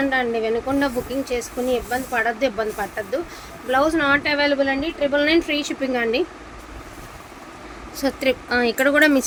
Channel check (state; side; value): identical; both; correlation 1.00